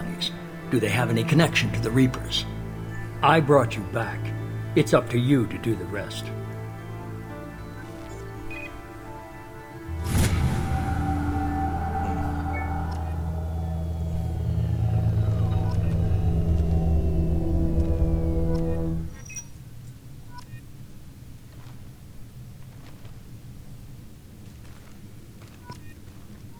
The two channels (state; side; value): identical; both; correlation 1.00